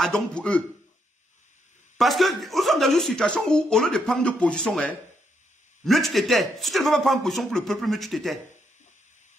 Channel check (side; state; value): both; normal; correlation 0.77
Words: pour eux. Parce que nous sommes dans une situation où, au lieu de prendre de position, mieux tu t'étais. Si tu ne veux pas prendre position pour le peuple, mieux tu t'étais.